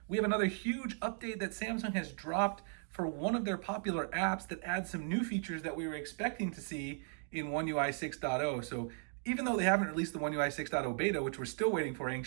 we have another huge update that Samsung has dropped for one of their popular apps that adds some new features that we were expecting to see in One UI 6.0. So even though they haven't released the One UI 6.0 beta, which we're still waiting for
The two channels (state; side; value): silent; left; 53 dB below the other